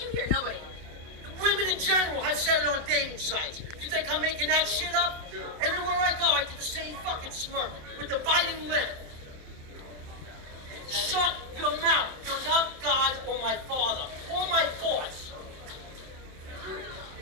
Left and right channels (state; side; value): late; left; 27 ms